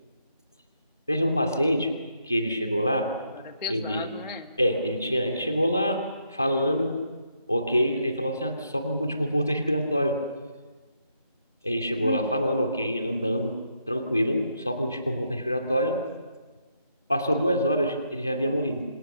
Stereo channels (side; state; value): both; inverted; correlation -0.76